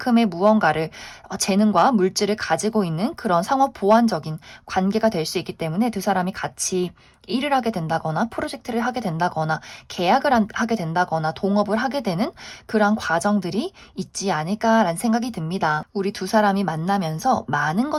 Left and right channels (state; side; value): identical; both; correlation 1.00